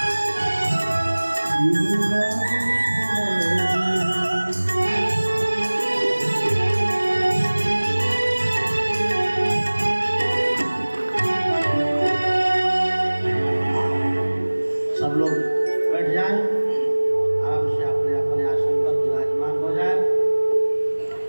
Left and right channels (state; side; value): inverted; both; correlation -1.00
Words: बैठ जाएं, आराम से अपने अपने आसन पर विराजमान हो जाएं